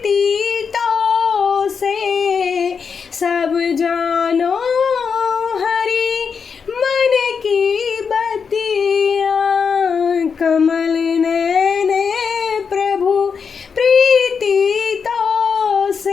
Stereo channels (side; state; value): right; quieter; 6.0 dB